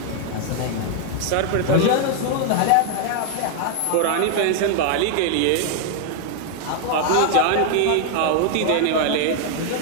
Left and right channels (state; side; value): different; both; correlation 0.00